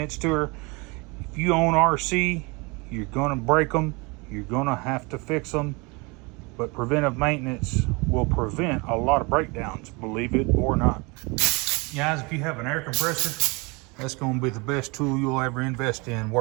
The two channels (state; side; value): quieter; left; 27.7 dB